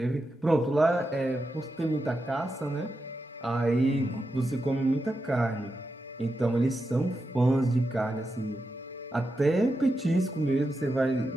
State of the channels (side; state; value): both; normal; correlation 0.88